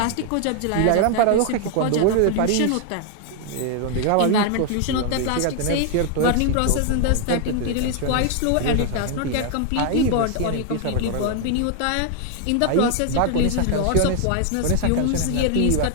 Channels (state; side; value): different; both; correlation 0.00